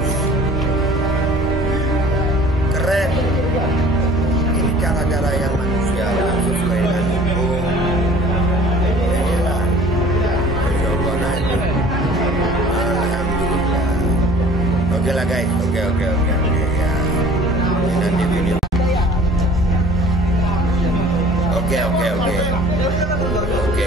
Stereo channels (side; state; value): both; normal; correlation 0.49